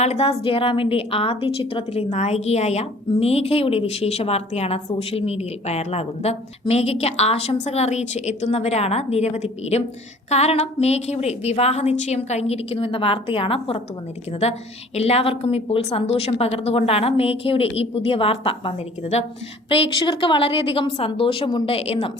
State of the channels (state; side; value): normal; both; correlation 0.51